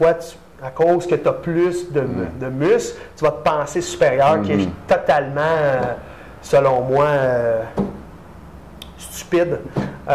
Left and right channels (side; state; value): both; identical; correlation 1.00